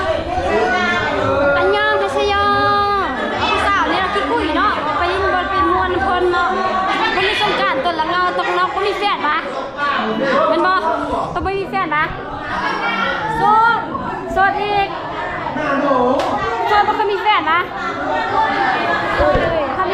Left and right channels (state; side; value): identical; both; correlation 1.00